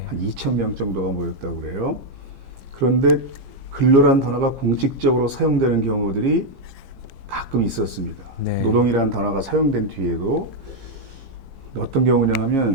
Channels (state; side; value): late; left; 15 ms